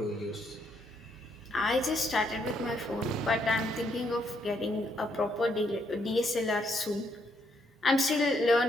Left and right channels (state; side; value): normal; both; correlation 0.74